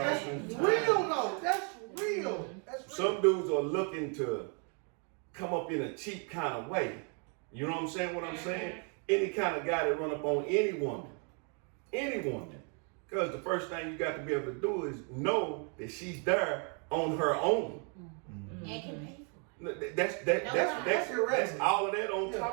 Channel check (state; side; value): quieter; left; 39.0 dB